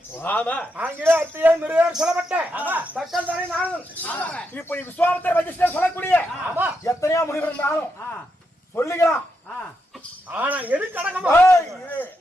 ஆமா ஆங்கில அத்தியே மிருகர் சொல்லப்பட்ட தக்கல் தானே நானும் இப்படி விஸ்வாமித்திர வசிஷ்டர் சொல்லக்கூடிய எத்தனையோ முனிவர் இருந்தாலும் சொல்லிக்கலாம். ஆனா எதுக்கு அடக்கமா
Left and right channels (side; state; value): both; normal; correlation 0.83